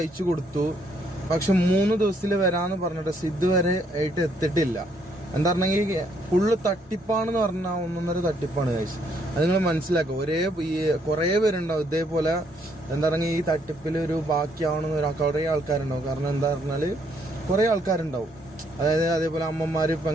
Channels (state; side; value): normal; both; correlation 0.70